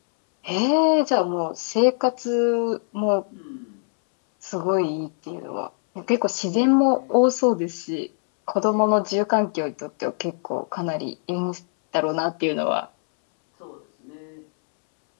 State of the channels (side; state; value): right; silent; 63 dB below the other